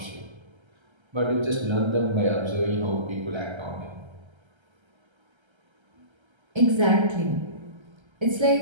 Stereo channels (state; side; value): late; left; 1.3 ms